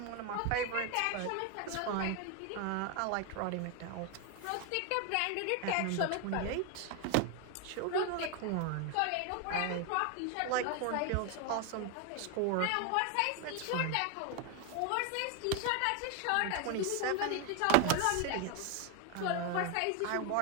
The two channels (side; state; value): both; different; correlation 0.01